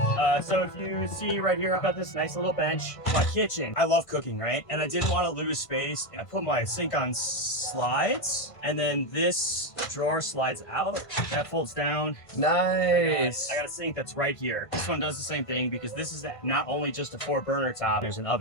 So if you see right here, I've got this nice little bench. My kitchen. I love cooking, right? And I didn't want to lose space. I put my sink on slides, and then this drawer slides out. That folds down. Nice. I got a sink that's right here. This one does the same thing because this is not only just a 4-burner top. There's an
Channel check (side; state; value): right; late; 1.5 ms